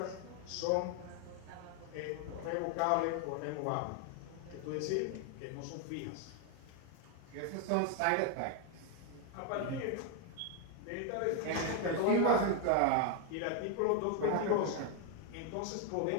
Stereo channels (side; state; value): both; different; correlation 0.00